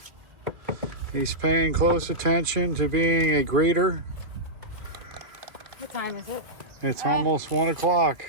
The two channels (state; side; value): late; left; 2.4 ms